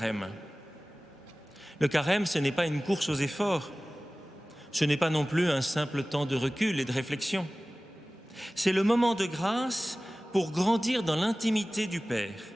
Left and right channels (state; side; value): normal; both; correlation 0.98